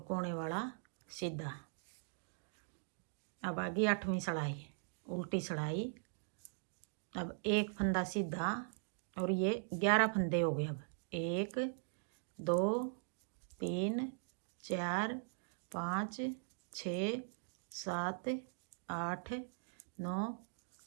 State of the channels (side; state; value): left; silent; digital silence